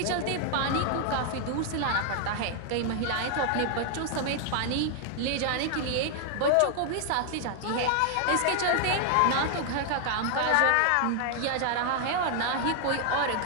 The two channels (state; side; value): different; both; correlation 0.00